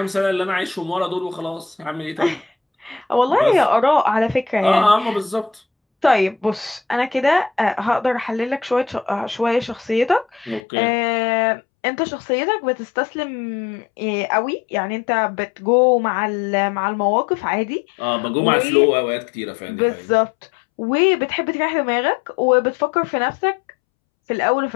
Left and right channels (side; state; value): right; drops out; at 10.6 s